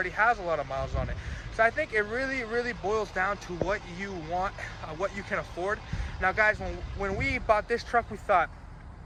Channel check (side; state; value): both; identical; correlation 1.00